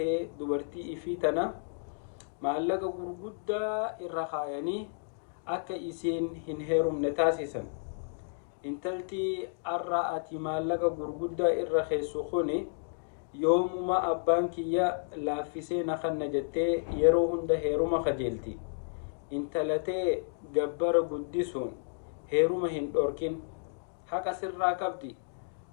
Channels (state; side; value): silent; right; digital silence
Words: dubartii ifii tana maallaqa gurguddaa irra kaayanii akka isiin hin heerumne taasisan. Intaltii arra ati maallaqa gurguddaa irra keessu kuni yoomuma abbaan kiyya laaffisee na kanna jettee yeroo hunda heeruma kajeelti. Intalatee gabbara guddisuun heeruma hin dhorkin haqa sirraa qabdi.